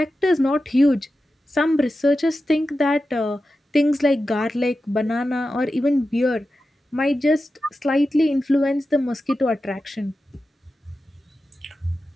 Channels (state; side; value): normal; both; correlation 0.92